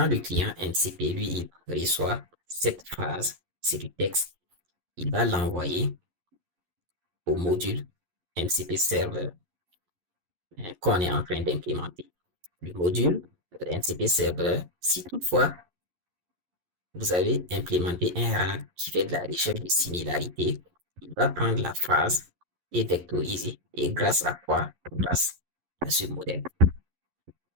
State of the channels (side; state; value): left; late; 11 ms